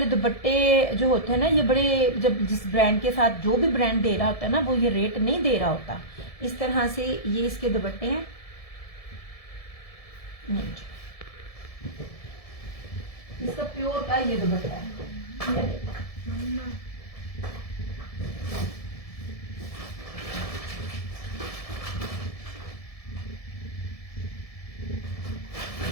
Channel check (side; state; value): right; late; 1.7 ms